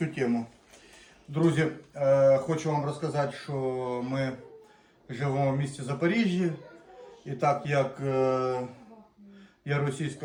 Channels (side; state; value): both; identical; correlation 1.00